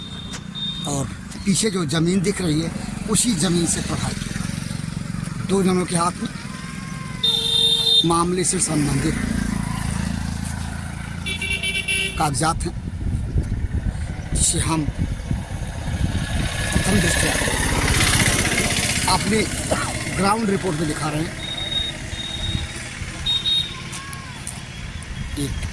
और पीछे जो ज़मीन दिख रही है उसी ज़मीन से प्रभावित दो जनों के हाथ में मामले से संबंधित कागजात हैं, जिसे हम प्रथम दृष्टया अपने ग्राउंड रिपोर्ट में दिखा रहे हैं। एक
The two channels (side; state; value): both; identical; correlation 1.00